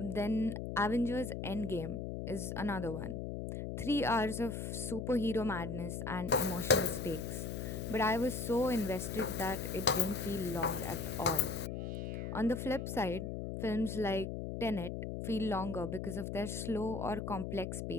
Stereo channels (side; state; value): left; noise; hum, 4 dB below the sound